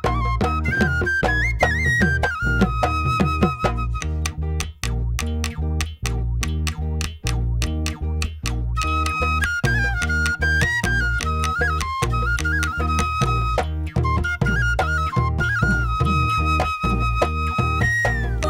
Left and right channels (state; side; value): identical; both; correlation 1.00